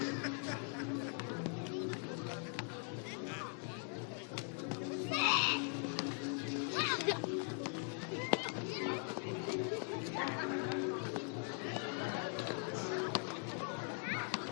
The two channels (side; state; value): right; quieter; 39.6 dB